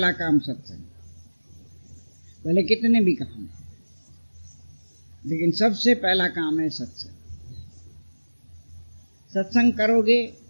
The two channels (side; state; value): both; inverted; correlation -1.00